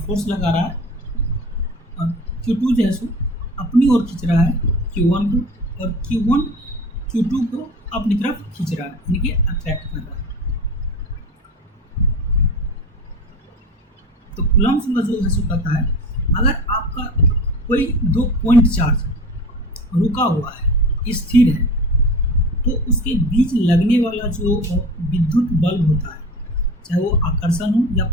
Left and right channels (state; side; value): normal; both; correlation 0.35